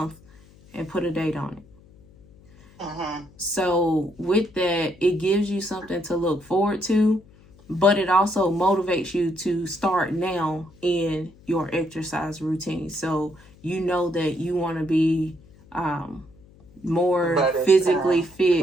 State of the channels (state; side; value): noise; left; hum, 26 dB below the sound